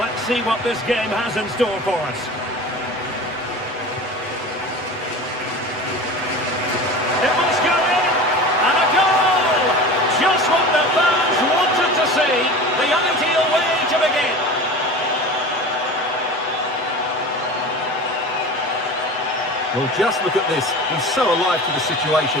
see what this game has in store for us. It must go in. And a goal! Just what the fans wanted to see. The ideal way to begin. Well, just look at this. He's so alive to the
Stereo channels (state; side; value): normal; both; correlation 0.34